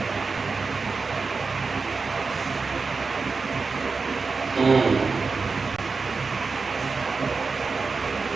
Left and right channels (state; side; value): quieter; left; 4.5 dB